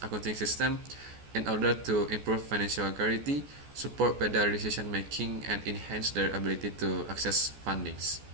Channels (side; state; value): left; late; 14 ms